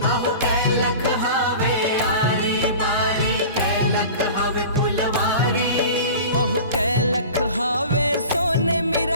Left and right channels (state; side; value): inverted; both; correlation -0.38